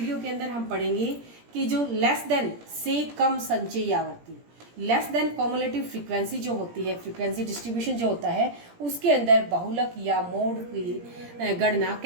के अंदर हम पढ़ेंगे कि जो लेस देन से कम संचयी आवर्ती, लेस देन कॉमुलेटिव फ्रीक्वेंसी जो होती है, फ्रीक्वेंसी डिस्ट्रीब्यूशन जो होता है, उसके अंदर बहुलक या मोड की गणना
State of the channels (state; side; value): late; left; 17 ms